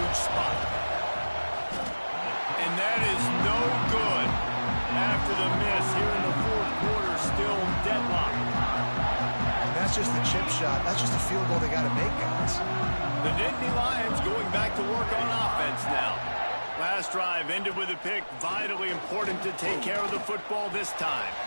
spot. And that is no good. After the miss here in the fourth quarter, still deadlocked. That's just the chip shot. That's just a field goal they got to make, guys. The Nittany Lions going back to work on offense now. Last drive ended with a pick. Vitally important to take care of the football this time.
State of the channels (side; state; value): both; inverted; correlation -1.00